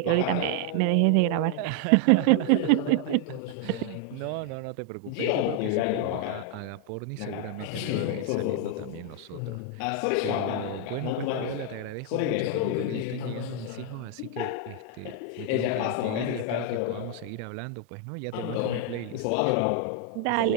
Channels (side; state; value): both; different; correlation 0.00